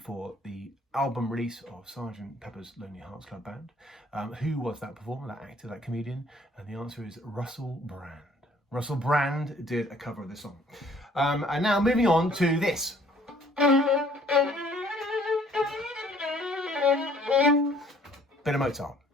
the album release of Sgt. Pepper's Lonely Hearts Club Band. Who was that performer, that actor, that comedian? And the answer is Russell Brand. Russell Brand did a cover of this song. And now moving on to this. Bit of Mozart.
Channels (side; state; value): both; normal; correlation 0.58